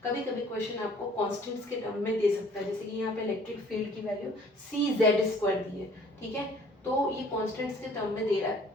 कभी कभी क्वेश्चन आपको कांस्टेंट्स के टर्म में दे सकता है, जैसे कि यहाँ पे इलेक्ट्रिक फील्ड की वैल्यू CZ² दी है, ठीक है। तो ये कांस्टेंट्स के टर्म में दे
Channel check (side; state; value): both; normal; correlation 0.55